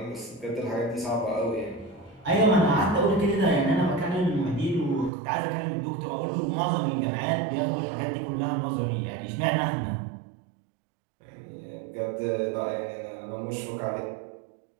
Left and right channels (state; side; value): drops out; left; at 5.1 s